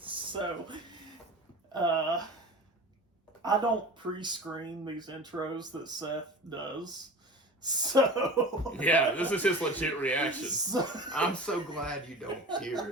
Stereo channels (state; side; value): normal; both; correlation 0.36